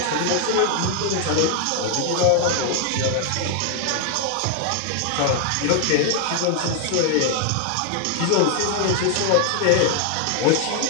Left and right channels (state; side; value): different; both; correlation 0.00